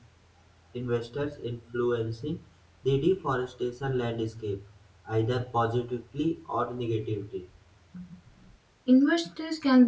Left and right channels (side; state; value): both; identical; correlation 1.00